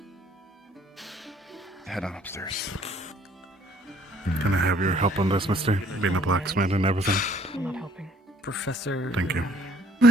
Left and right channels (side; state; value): both; normal; correlation 0.60